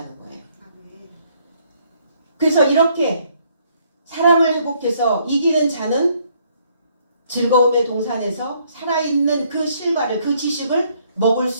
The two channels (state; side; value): inverted; both; correlation -0.68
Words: 거예요. 그래서 이렇게 사랑을 회복해서 이기는 자는 즐거움의 동산에서 살아있는 그 실과를, 그 지식을 먹을